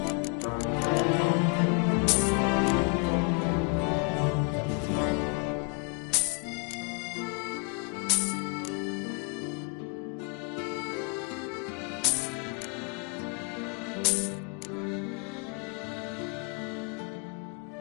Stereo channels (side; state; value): right; quieter; 33.3 dB